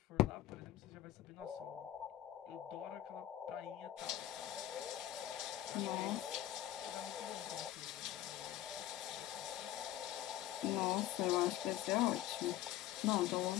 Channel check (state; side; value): quieter; right; 13.3 dB